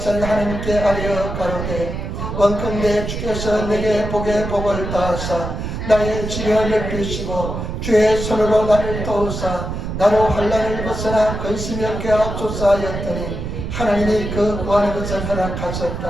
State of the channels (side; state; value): right; noise; rumble, 5 dB below the sound